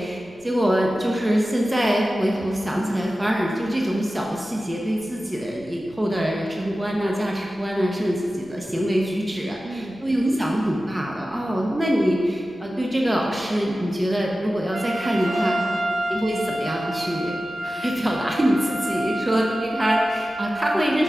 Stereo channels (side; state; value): right; noise; rumble, 27 dB below the sound